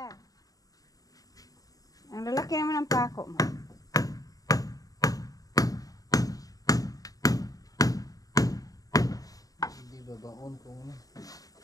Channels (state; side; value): late; right; 0.18 ms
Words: Ang lalaki naman ng pako mo. Hindi babaon kung